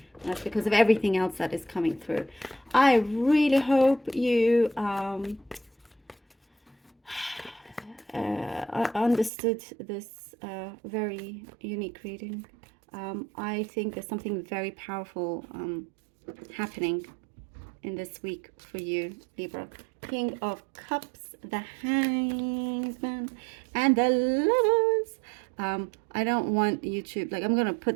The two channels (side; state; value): left; drops out; at 9.3 s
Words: That's because of everything else that is coming through. I really hope you understood this very unique reading. I think there's something very powerful happening in this week for you, Libra. King of Cups, the Hangman, and the Lovers. I don't want you to, like, I'm going to